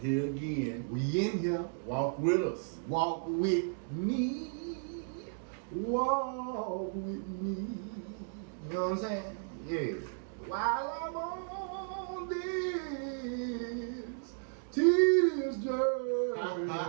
here again. We in here. Walk with us. Walk with me. Walk with me. You know what I'm saying? Yeah. While I'm on this tedious journey, I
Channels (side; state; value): left; silent; digital silence